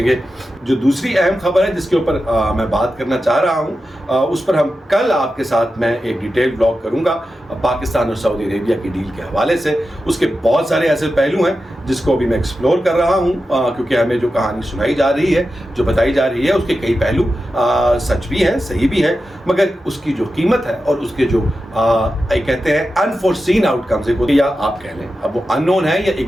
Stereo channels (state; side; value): normal; both; correlation 0.91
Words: گے؟ جو دوسری اہم خبر ہے جس کے اوپر میں بات کرنا چاہ رہا ہوں، اس پر ہم کل آپ کے ساتھ میں ایک ڈیٹیل بلاگ کروں گا پاکستان اور سعودی عربیہ کی ڈیل کے حوالے سے. اس کے بہت سارے ایسے پہلو ہیں جس کو ابھی میں ایکسپلور کر رہا ہوں، کیونکہ ہمیں جو کہانی سنائی جا رہی ہے، جو بتائی جا رہی ہے، اس کے کئی پہلو سچ بھی ہیں، صحیح بھی ہیں، مگر اس کی جو قیمت ہے اور اس کے جو کہتے ہیں انفورسین آؤٹ کمز، یا آپ کہہ لیں اب وہ ان نون ہے یا